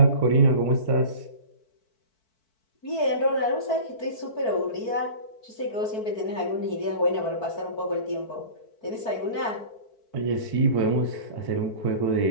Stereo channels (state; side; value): late; right; 4.5 ms